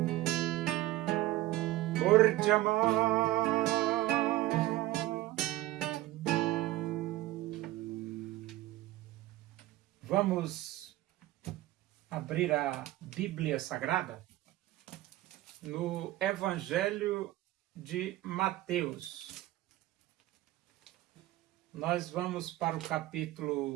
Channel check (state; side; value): quieter; left; 16.5 dB